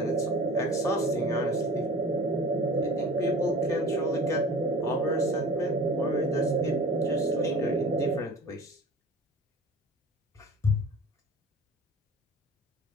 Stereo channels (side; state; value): both; normal; correlation 0.40